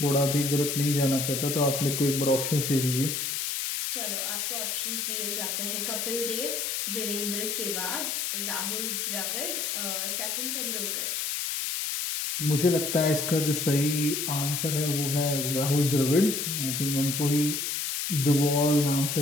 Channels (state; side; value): noise; left; hiss, 1 dB below the sound